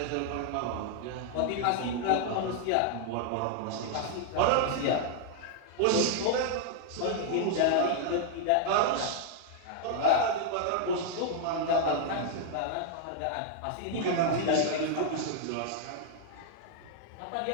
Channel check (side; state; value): both; different; correlation 0.00